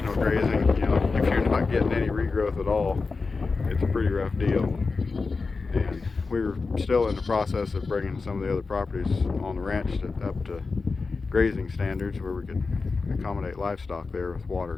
grazing, if you're not getting any regrowth at all, it's a pretty rough deal. And we were still in the process of bringing some of the other properties on the ranch up to grazing standards where we could accommodate livestock there with water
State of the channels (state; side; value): quieter; right; 4.2 dB